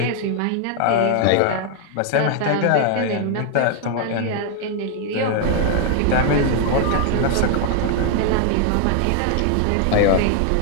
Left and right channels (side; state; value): both; different; correlation 0.00